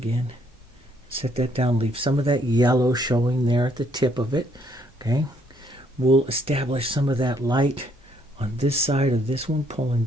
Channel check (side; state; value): both; normal; correlation 0.69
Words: Set that down. Leave some of that yellow showing there at the tip of it. Okay. We'll establish some of that light on this side of this one, pulling